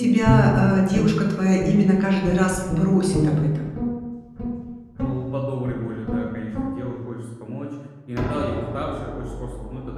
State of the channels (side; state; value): both; identical; correlation 1.00